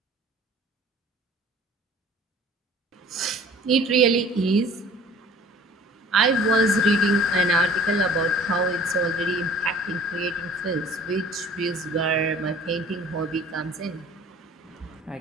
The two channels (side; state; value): both; normal; correlation 0.49